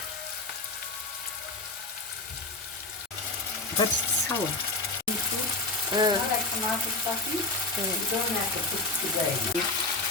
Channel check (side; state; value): right; quieter; 3.1 dB